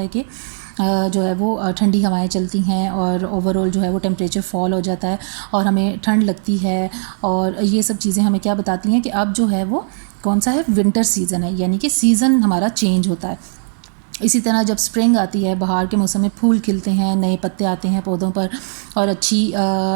कि जो है वो ठंडी हवाएं चलती हैं और ओवरऑल जो है वो टेम्परेचर फॉल हो जाता है और हमें ठंड लगती है. और ये सब चीज़ें हमें क्या बताती हैं कि अब जो है वो कौन सा है, विंटर सीज़न है, यानी कि सीज़न हमारा चेंज होता है. इसी तरह जब स्प्रिंग आती है, बहार के मौसम में फूल खिलते हैं, नए पत्ते आते हैं पौधों पर और अच्छी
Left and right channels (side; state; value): left; silent; digital silence